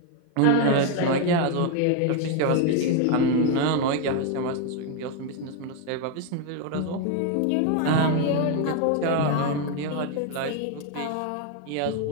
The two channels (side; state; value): both; different; correlation 0.01